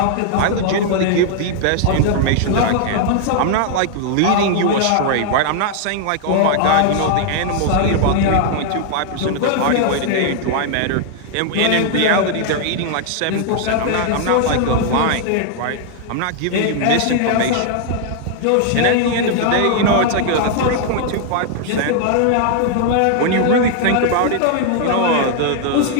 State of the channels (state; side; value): different; both; correlation 0.00